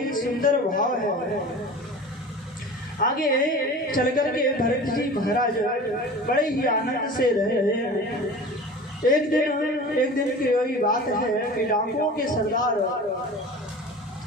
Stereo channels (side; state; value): both; normal; correlation 0.37